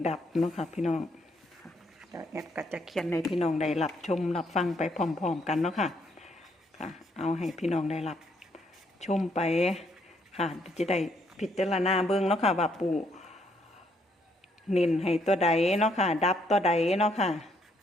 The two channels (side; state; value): both; normal; correlation 0.71